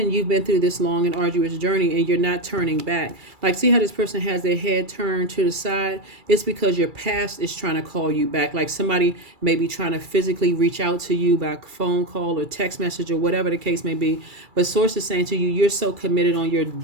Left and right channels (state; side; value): late; left; 2.3 ms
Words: you've been through this long and arduous journey and you're not turning back. Like, see how this person has their head turned to the side? It's because your past is trying to call you back. Like, somebody may be trying to physically reach out to you by phone call or text message or whatever the case may be. But source is saying to you, you're so committed on your